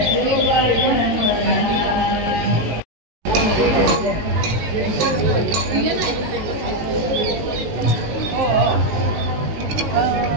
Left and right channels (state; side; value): late; left; 19 ms